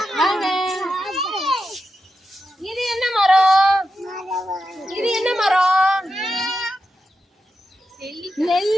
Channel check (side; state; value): both; normal; correlation 0.89